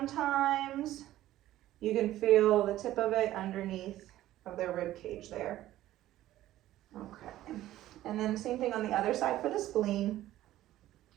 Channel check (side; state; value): left; quieter; 14.4 dB